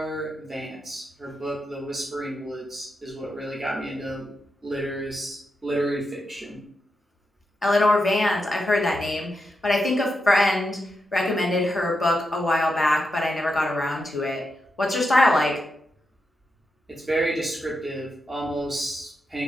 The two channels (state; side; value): normal; both; correlation 0.86